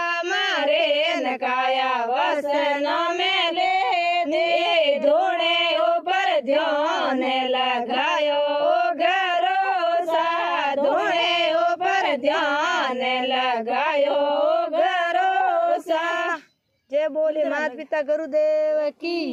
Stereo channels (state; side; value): identical; both; correlation 1.00